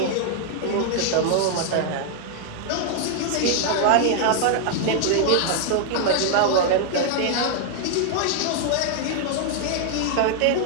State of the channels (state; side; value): different; both; correlation 0.00